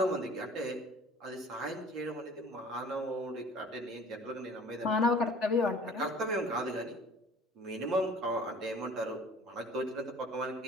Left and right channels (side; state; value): both; normal; correlation 0.48